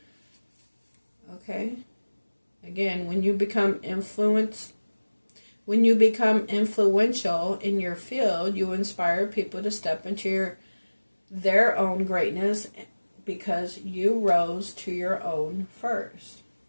Okay. Again, when you become influential in your field, you inspire people to step into their own greatness because you rose to your own first.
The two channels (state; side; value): inverted; both; correlation -1.00